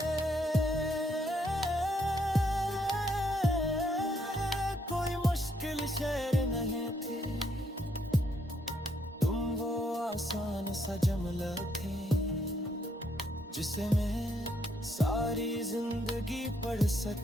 कोई मुश्किल शय नहीं थी, तुम वो आसान सा जुमला थे जिसे मैं सारी जिंदगी पढ़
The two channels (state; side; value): normal; both; correlation 0.73